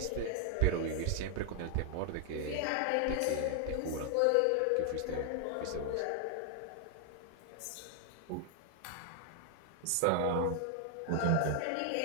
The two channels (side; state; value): both; different; correlation 0.00